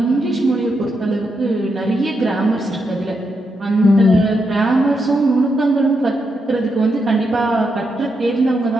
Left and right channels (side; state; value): both; normal; correlation 0.83